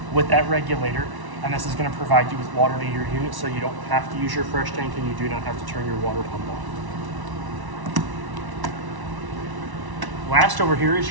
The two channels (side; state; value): left; late; 1.1 ms